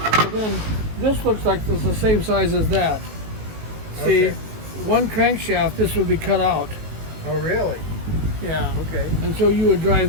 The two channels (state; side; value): late; left; 19 ms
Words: So then this looks like it's the same size as that. See, one crankshaft, this would be cut out. Oh, really? Yeah. Okay. And so you would